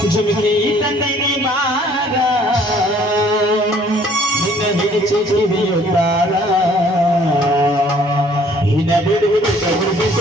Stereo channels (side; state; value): both; normal; correlation 0.58